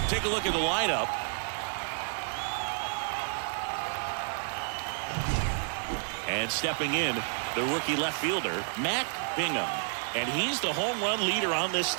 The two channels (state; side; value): silent; left; digital silence